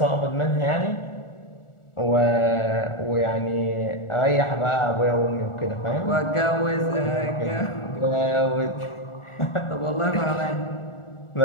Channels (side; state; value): right; late; 1.4 ms